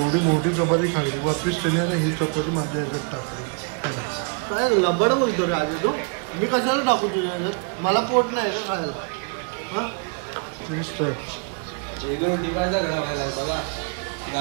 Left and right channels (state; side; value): quieter; left; 37.2 dB